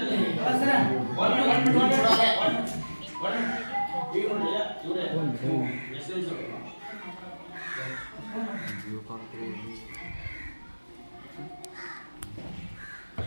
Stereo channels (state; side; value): inverted; both; correlation -1.00